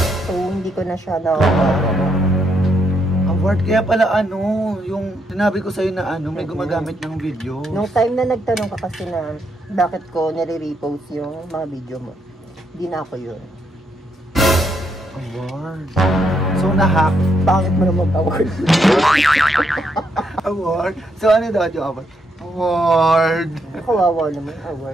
So, hindi ko na siya na award. Kaya pala yung sinabi ko sa'yo na may gumagamit ng video. Nung time na nagtanong ka kasi na bakit ko nire-repost yung mga video mo, hindi na ako yun. Award. So, na-hack. Bakit mo na mag-award? Award. So, ano daw yung award? Award. Kawawa naman,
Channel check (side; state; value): both; normal; correlation 0.77